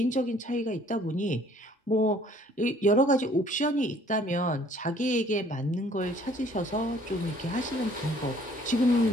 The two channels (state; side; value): normal; both; correlation 0.57